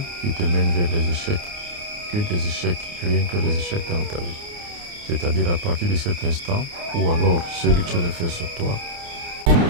qui te mène vers les échecs, que des échecs, rien que les échecs dans ta vie. C'est-à-dire à partir de cet instant où alors ce rituel est fait sur toi.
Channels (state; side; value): late; left; 29 ms